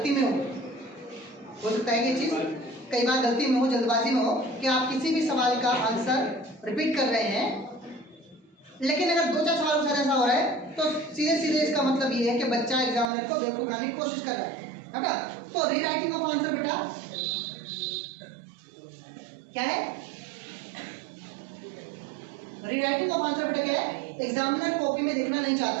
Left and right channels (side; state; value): left; drops out; at 13.1 s